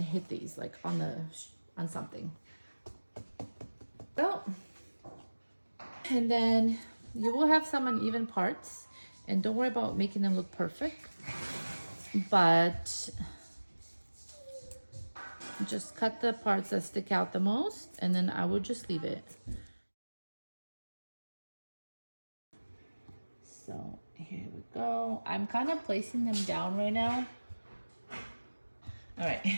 hit these like on something. So, and then you will have some uneven parts, and don't worry about making them look perfect, but just cut the parts that stick out the most, and then I will just leave it. So here we go. I'm kind of placing them down right now. All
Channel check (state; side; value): inverted; both; correlation -1.00